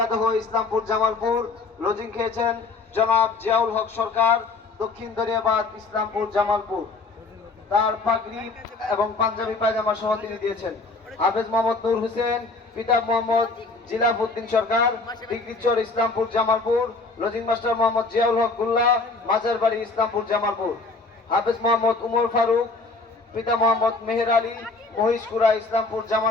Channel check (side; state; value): right; quieter; 3.7 dB